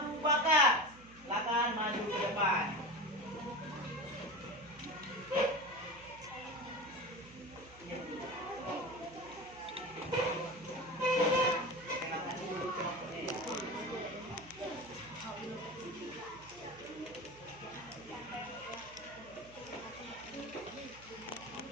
Bakar. Silakan maju ke depan. Kenalkan dulu kelompoknya ya.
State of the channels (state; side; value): noise; right; hum, 21 dB below the sound